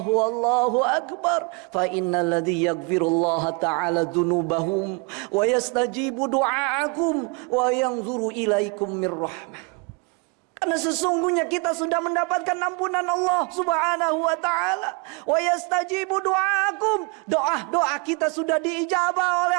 akbar. Fa innal ladzi yaghfirullaha ta'ala dzunubahum wa yastajibu du'aakum wa yanzuru ilaikum mir rahmah. Karena sesungguhnya kita sudah mendapatkan ampunan Allah subhanahu wa ta'ala. Wa yastajibu du'aakum, doa-doa kita sudah diijabah oleh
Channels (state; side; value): quieter; left; 31.1 dB